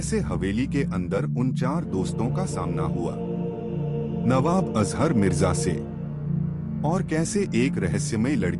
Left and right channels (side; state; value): both; identical; correlation 1.00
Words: हवेली के अंदर उन 4 दोस्तों का सामना हुआ नवाब अजहर मिर्जा से, और कैसे एक रहस्यमय